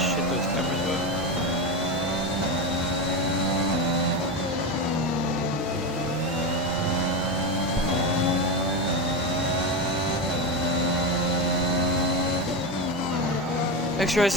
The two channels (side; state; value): both; normal; correlation 0.16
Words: those cameras were. X-Rays